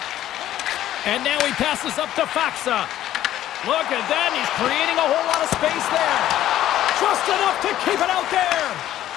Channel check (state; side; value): quieter; right; 12.8 dB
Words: And now he passes up to Faxa. Look at that. He's creating a whole lot of space there. Just enough to keep it out there.